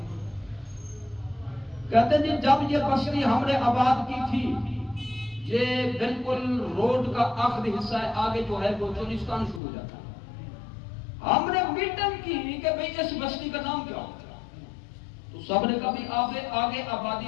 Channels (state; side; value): drops out; right; at 9.6 s